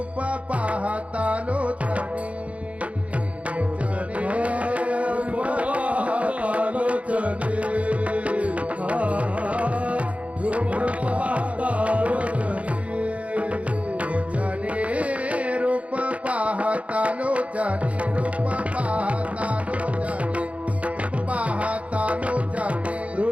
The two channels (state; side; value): late; left; 0.065 ms